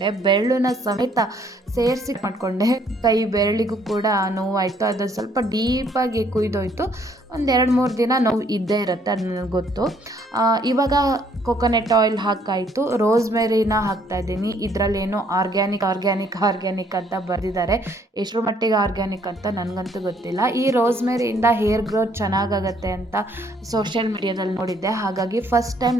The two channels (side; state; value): both; normal; correlation 0.65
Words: ಬೆರಳನ್ನ ಸಮೇತ ಸೇರಿಸಿ ಮಾಡಿಕೊಂಡೆ. ಕೈ ಬೆರಳಿಗೂ ಕೂಡ ನೋವಾಯಿತು. ಅದು ಸ್ವಲ್ಪ ಡೀಪಾಗಿ ಕುಯ್ದೋಯ್ತು. ಒಂದು 2-3 ದಿನ ನೋವು ಇದ್ದೇ ಇರುತ್ತೆ, ಅದು ನನಗೆ ಗೊತ್ತು. ಇವಾಗ ಕೊಕೊನೆಟ್ ಆಯಿಲ್ ಹಾಕಾಯಿತು. ರೋಸ್ಮೆರಿನ ಹಾಕ್ತಾಯಿದ್ದೀನಿ. ಇದರಲ್ಲೇನೋ ಆರ್ಗ್ಯಾನಿಕ್ ಅಂತ ಬರೆದಿದ್ದಾರೆ. ಎಷ್ಟರ ಮಟ್ಟಿಗೆ ಆರ್ಗ್ಯಾನಿಕ್ ಅಂತ ನನಗಂತೂ ಗೊತ್ತಿಲ್ಲ. ಈ ರೋಸ್ಮೆರಿಯಿಂದ ಹೇರ್ ಗ್ರೋತ್ ಚೆನ್ನಾಗಾಗತ್ತೆ ಅಂತ ಸೋಷಿಯಲ್ ಮೀಡಿಯಾದಲ್ಲಿ ನೋಡಿದ್ದೆ. ಹಾಗಾಗಿ ಫಸ್ಟ್ ಟೈಮ್